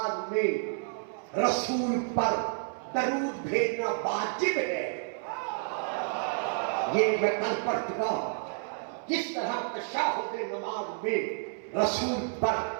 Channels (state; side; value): silent; left; 58 dB below the other